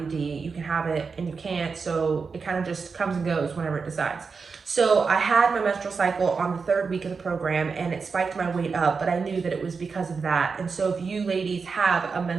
You can have it and you can't, so it kind of just comes and goes whenever it decides. So I had my menstrual cycle on the 3rd week of the program, and it spiked my weight up, but I knew that it was because of that. And so if you ladies have a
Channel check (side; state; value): left; quieter; 5.0 dB